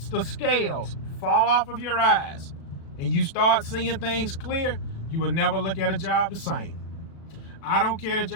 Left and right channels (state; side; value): late; right; 36 ms